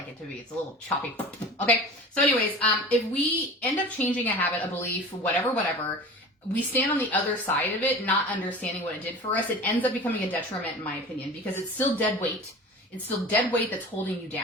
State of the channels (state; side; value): normal; both; correlation 0.37